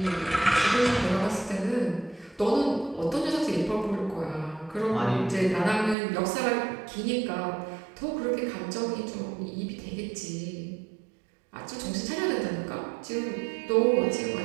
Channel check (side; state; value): left; drops out; at 6.0 s